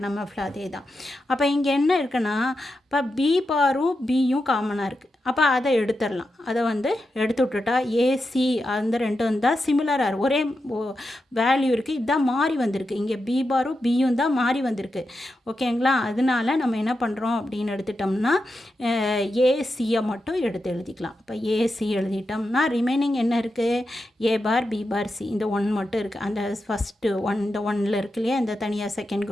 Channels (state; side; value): normal; both; correlation 0.88